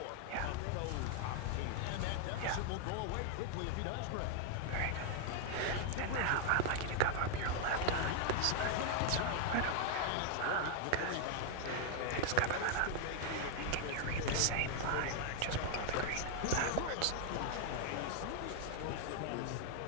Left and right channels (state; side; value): different; both; correlation 0.00